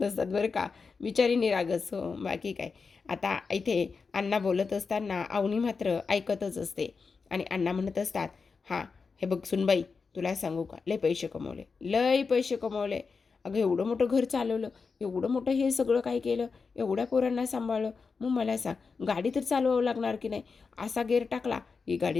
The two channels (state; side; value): quieter; right; 4.9 dB